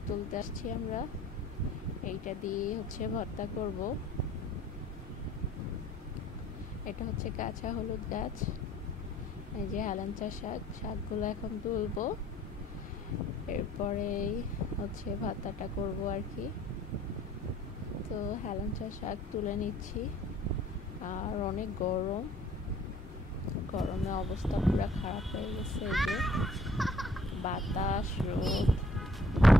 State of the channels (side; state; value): both; normal; correlation 0.57